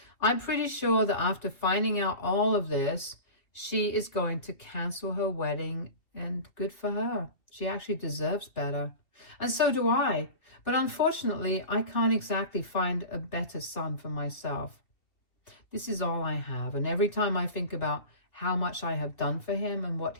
I'm pretty sure that after finding out all of this, she is going to cancel her wedding, and good for her. She actually deserves better. And so do I. But unfortunately, I can't exactly find a better son for myself. This is all I have, and every time I think about how much I have done for him and what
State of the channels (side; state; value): right; late; 2.7 ms